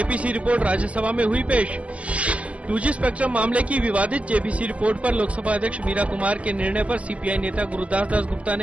रिपोर्ट राज्यसभा में हुई पेश। 2G स्पेक्ट्रम मामले की विवादित जेपीसी रिपोर्ट पर लोकसभा अध्यक्ष मीरा कुमार के निर्णय पर सीपीआई नेता गुरुदास दास गुप्ता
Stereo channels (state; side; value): late; left; 0.063 ms